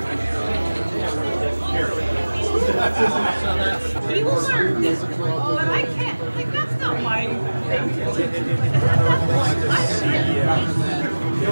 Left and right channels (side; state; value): both; inverted; correlation -1.00